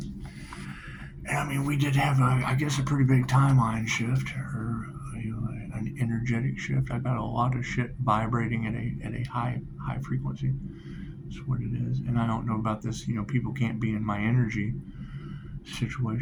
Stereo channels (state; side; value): identical; both; correlation 1.00